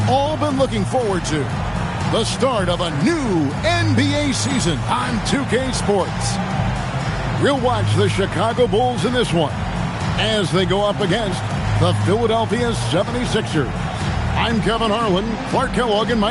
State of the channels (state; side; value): identical; both; correlation 1.00